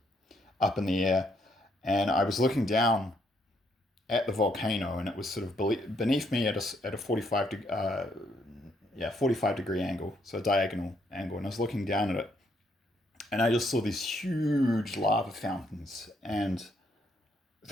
up in the air, and I was looking down at the volcano, and it was sort of beneath me at a 45 degree angle, so a diagonal angle, and I was looking down at it, and I just saw these huge lava fountains, and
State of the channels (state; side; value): normal; both; correlation 0.72